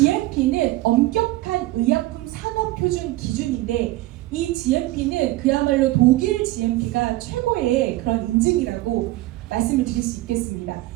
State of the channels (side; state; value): left; quieter; 17.9 dB